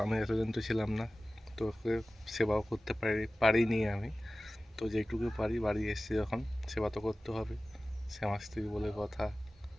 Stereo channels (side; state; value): both; normal; correlation 0.97